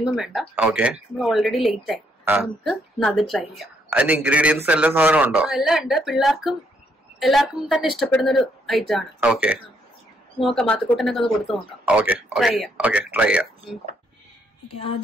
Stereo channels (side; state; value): both; normal; correlation 0.73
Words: വേണ്ട. ഓക്കെ, നമ്മൾ ഓൾറെഡി ലേറ്റ് ആയി, നമുക്ക് അത് ട്രൈ ചെയ്യാം. അതിന്റെ ഇൻഗ്രീഡിയൻസ് എല്ലാ സാധനം ഉണ്ടോ? എല്ലാം ഉണ്ട്. എല്ലാവർക്കും തന്നെ ഇഷ്ടപ്പെടുന്ന ഒരു ഐറ്റം ആണ്. ഓക്കെ, നോക്കാം, മാത്തുക്കൂട്ടനൊക്കെ ഒന്ന് കൊടുത്തു നോക്കാം. ട്രൈ ചെയ്യാം.